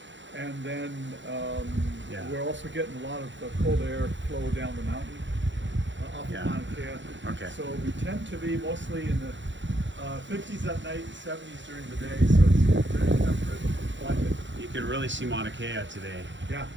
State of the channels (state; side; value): late; left; 0.54 ms